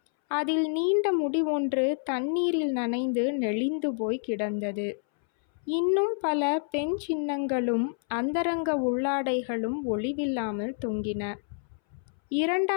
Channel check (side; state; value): right; silent; 59 dB below the other